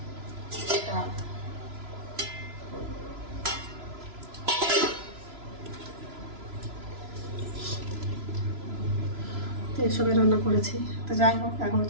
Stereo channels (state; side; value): late; left; 3.0 ms